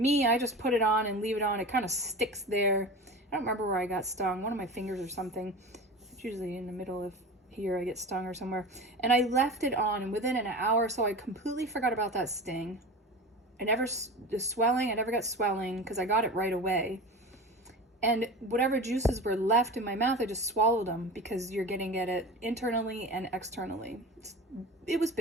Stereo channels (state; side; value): normal; both; correlation 0.31